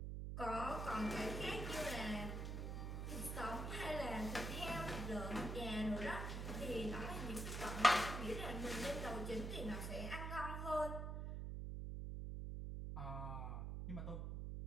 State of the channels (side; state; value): right; noise; hum, 3 dB below the sound